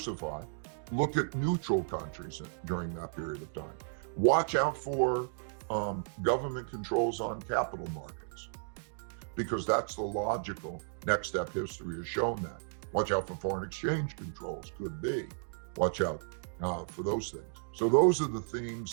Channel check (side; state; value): left; silent; digital silence